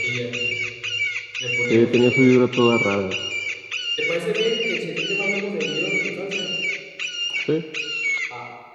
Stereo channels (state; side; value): identical; both; correlation 1.00